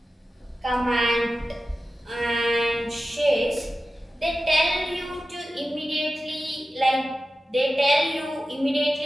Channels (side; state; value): both; normal; correlation 0.93